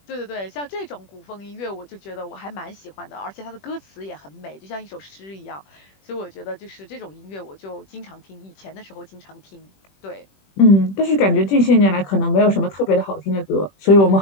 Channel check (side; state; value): right; late; 21 ms